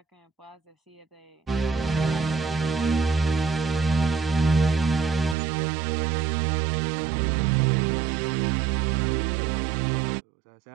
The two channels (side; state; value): left; drops out; at 5.4 s